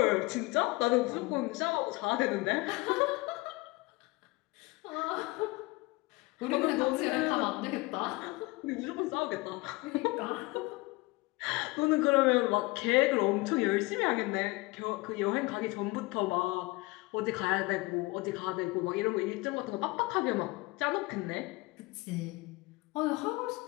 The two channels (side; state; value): right; quieter; 23.2 dB